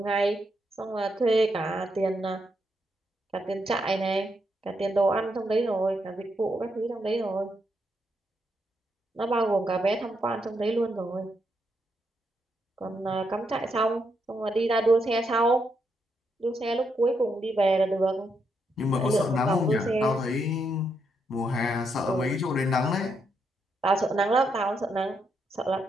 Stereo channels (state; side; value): normal; both; correlation 0.79